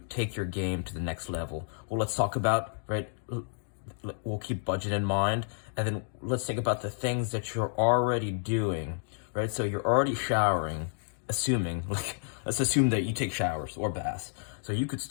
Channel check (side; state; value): right; silent; digital silence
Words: take your game to the next level? Well, let's talk about, right, we'll keep budget in mind, and then let's think about the things that you're already doing, right? So you're already showering, let's assume that you take showers or baths. So you could